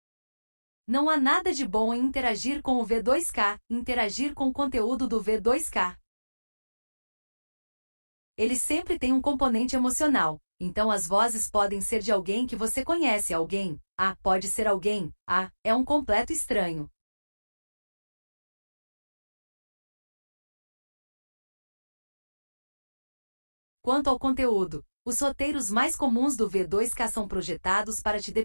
Não há nada de bom em interagir com o V2K, interagir com o conteúdo do V2K. Ele sempre tem um componente emocional, então as vozes podem ser de alguém que você conhece, alguém, pode ser alguém, é um completo estranho. Quanto ao conteúdo, os roteiros mais comuns do V2K são projetados para te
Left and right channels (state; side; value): inverted; both; correlation -1.00